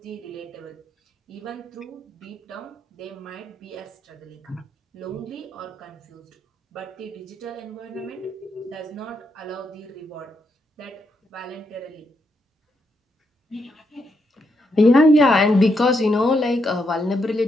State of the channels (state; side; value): normal; both; correlation 0.80